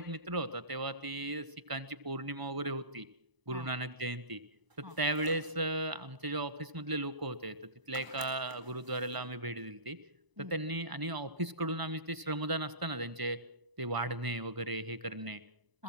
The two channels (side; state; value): left; late; 1.0 ms